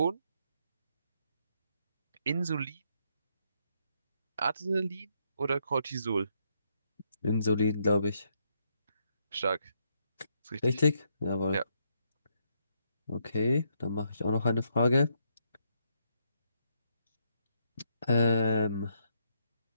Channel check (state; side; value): inverted; both; correlation -0.76